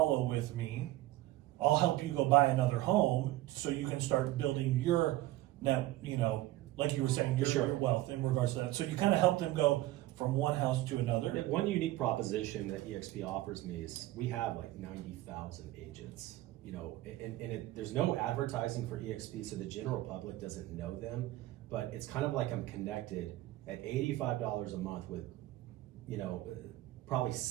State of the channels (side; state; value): left; quieter; 16.6 dB